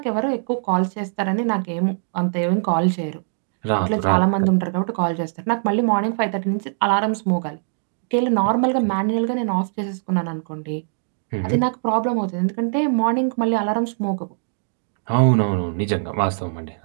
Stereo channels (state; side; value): silent; left; digital silence